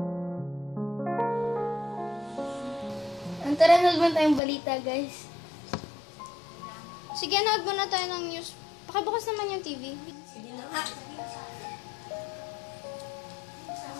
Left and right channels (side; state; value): right; drops out; at 4.4 s